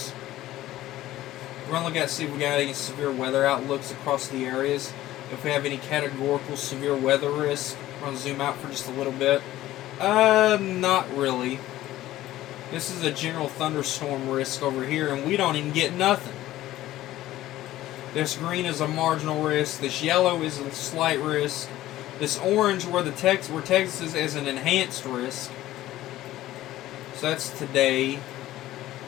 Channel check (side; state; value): right; quieter; 15.0 dB